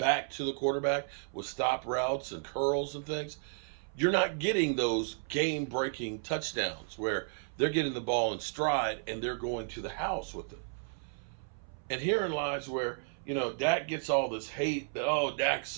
to the quarterback with stop routes and curls and things. You're not getting those game-breaking touchdowns where they're getting the ball in stride and they're going to the house with it. And herein lies where, Dak gets all this hate that, oh, Dak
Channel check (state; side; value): silent; left; 56 dB below the other